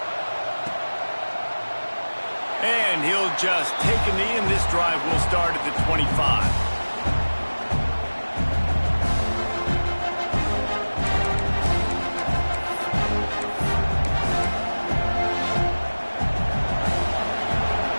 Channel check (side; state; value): both; inverted; correlation -1.00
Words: And he'll just take a knee, and this drive will start at the 25.